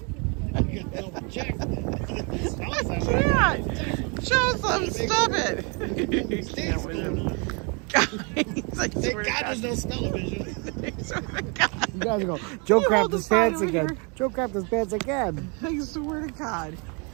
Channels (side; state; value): left; quieter; 33.6 dB